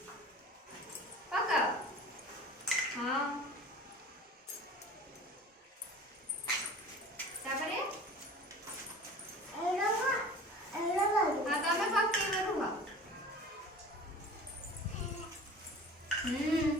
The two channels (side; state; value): both; normal; correlation 0.41